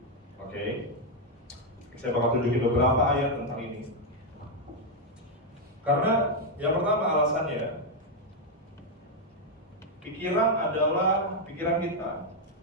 Oke. Saya bakal tunjukin beberapa ayat tentang ini. Karena yang pertama alasannya, pikiran kita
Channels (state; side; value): normal; both; correlation 0.01